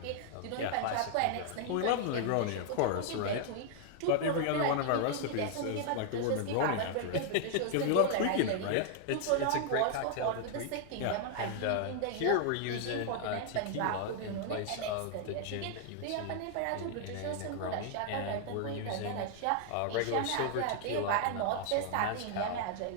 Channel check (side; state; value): both; different; correlation 0.00